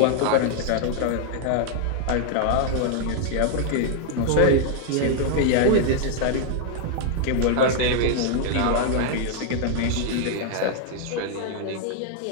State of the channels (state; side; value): different; both; correlation 0.00